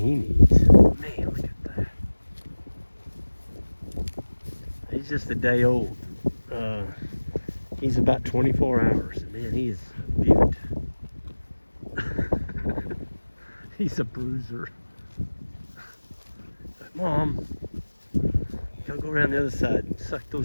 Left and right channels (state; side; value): inverted; both; correlation -1.00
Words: he needs. Man, look at that. He's just a day old. He's about 24 hours. Man, he is a beaut. He's a bruiser. Mom, gotta go around the other side and suck